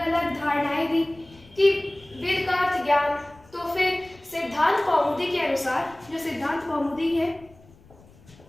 अलग धारणाएं दी कि वेद का अर्थ ज्ञान। तो फिर सिद्धांत कौमुदी के अनुसार, जो सिद्धांत कौमुदी है,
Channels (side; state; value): left; noise; rumble, 25 dB below the sound